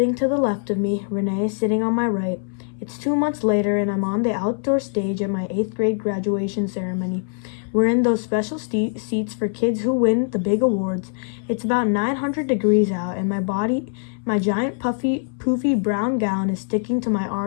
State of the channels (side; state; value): right; silent; 61 dB below the other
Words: to the left of me, Renee is sitting on my right. It's 2 months later and I'm on the outdoor stage at my 8th grade graduation ceremony. We're in those special seats for kids who win the big awards. It's about 900 degrees out and my giant poofy brown gown is sticking to my